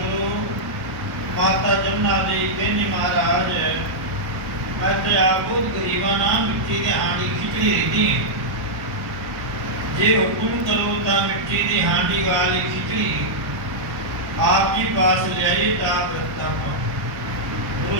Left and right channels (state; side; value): late; left; 1.1 ms